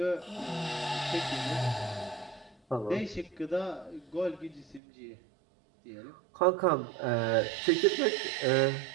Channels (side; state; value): left; drops out; at 4.8 s